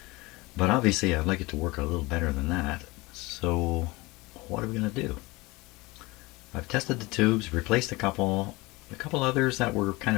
But obviously I'd like it to work a little better than that. So what are we going to do? I've tested the tubes, replaced a couple others that were kind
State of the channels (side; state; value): right; quieter; 23.0 dB